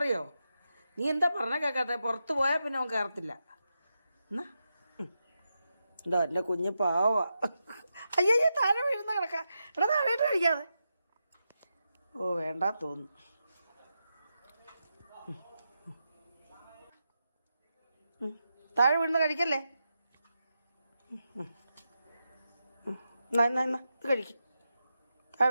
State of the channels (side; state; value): both; inverted; correlation -0.88